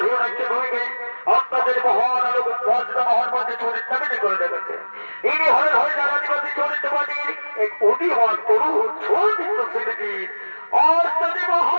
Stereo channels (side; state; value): both; inverted; correlation -1.00